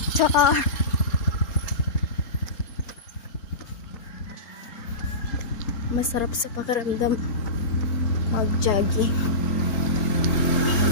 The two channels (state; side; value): late; right; 4.3 ms